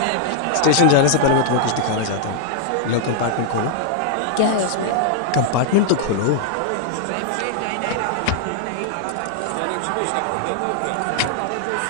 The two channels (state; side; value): different; both; correlation -0.01